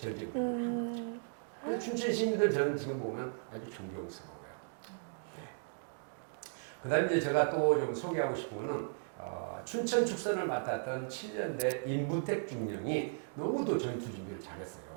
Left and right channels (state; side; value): silent; left; digital silence